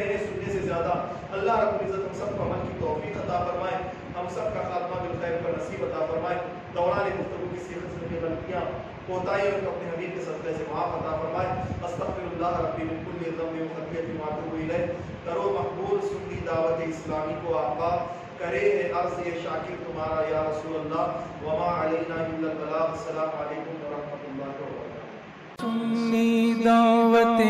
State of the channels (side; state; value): both; identical; correlation 1.00